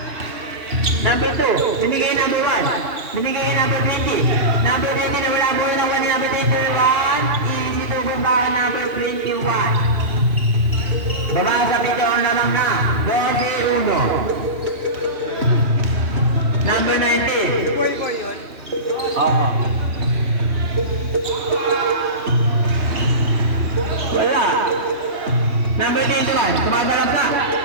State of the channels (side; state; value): left; late; 2.7 ms